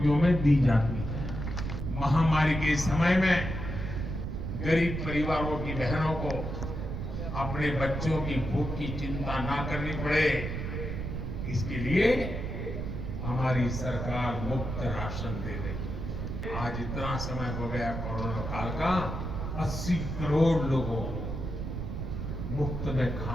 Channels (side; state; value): right; noise; rumble, 4 dB below the sound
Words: में दी जाती है। महामारी के समय में गरीब परिवारों की बहनों को अपने बच्चों की भूख की चिंता ना करनी पड़े, इसके लिए हमारी सरकार मुफ्त राशन दे रही। आज इतना समय हो गया कोरोना काल का, 80 करोड़ लोगों को मुफ्त में